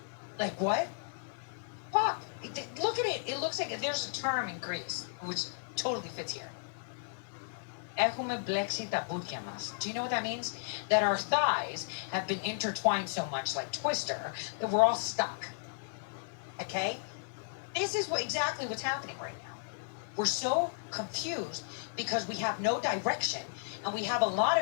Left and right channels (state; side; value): silent; right; digital silence